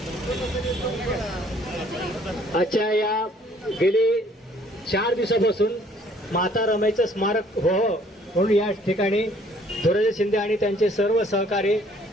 आजच्या या गेली 4 दिवसापासून माता रमाईचं स्मारक व्हावं म्हणून या ठिकाणी धुराजी शिंदे आणि त्यांचे सर्व सहकारी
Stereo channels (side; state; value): both; normal; correlation 0.60